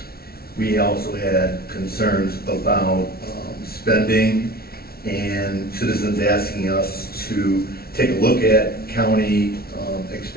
We also had concerns about spending and citizens asking us to take a look at county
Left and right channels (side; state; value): right; late; 0.44 ms